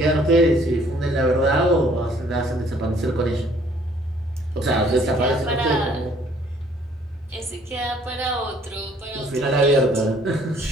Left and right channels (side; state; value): both; normal; correlation 0.60